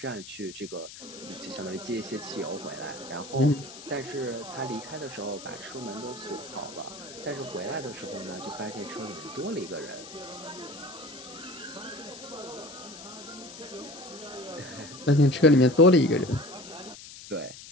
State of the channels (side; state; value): left; noise; hiss, 14 dB below the sound